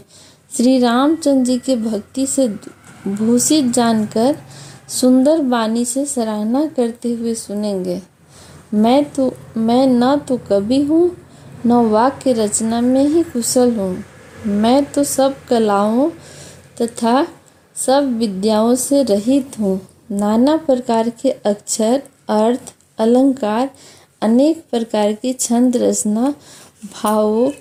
श्री रामचंद्र जी के भक्ति से भूषित जानकर सुंदर वाणी से सराहना करते हुए सुनेंगे। मैं न तो कवि हूँ, न वाक्य रचना में ही कुशल हूँ। मैं तो सब कलाओं तथा सब विद्याओं से रहित हूँ। नाना प्रकार के अक्षर, अर्थ, अलंकार, अनेक प्रकार की छंद रचना, भावों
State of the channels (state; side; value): identical; both; correlation 1.00